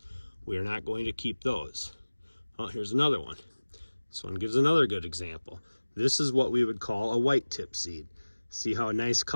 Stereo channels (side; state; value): both; inverted; correlation -1.00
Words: We are not going to keep those. Oh, here's another one. This one gives another good example. This is what we would call a white tip seed. See how nice